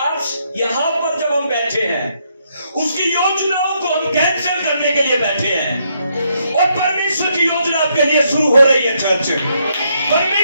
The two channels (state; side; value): inverted; both; correlation -0.75